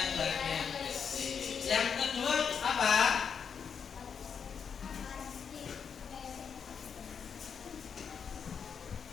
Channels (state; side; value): quieter; right; 6.7 dB